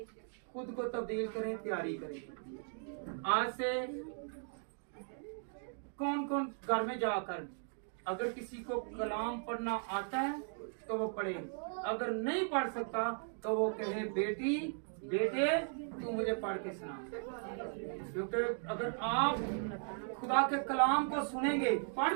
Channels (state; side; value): silent; left; 53 dB below the other